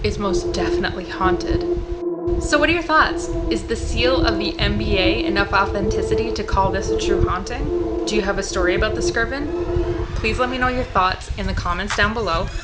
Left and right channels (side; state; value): both; identical; correlation 1.00